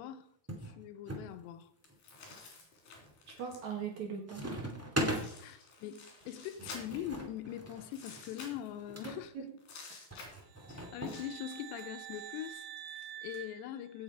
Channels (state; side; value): normal; both; correlation 0.14